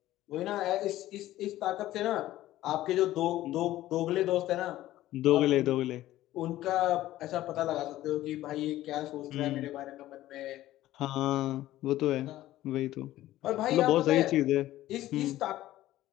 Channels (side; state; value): right; quieter; 14.8 dB